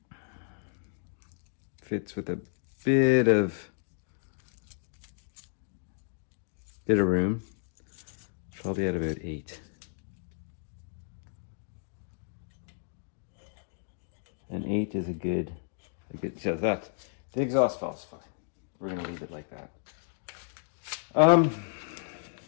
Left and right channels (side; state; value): right; silent; digital silence